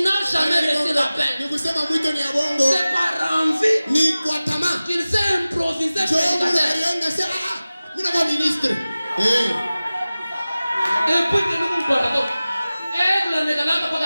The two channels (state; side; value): inverted; both; correlation -0.97